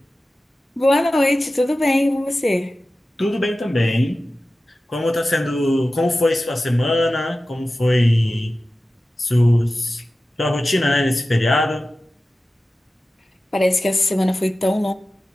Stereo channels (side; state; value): both; normal; correlation 0.95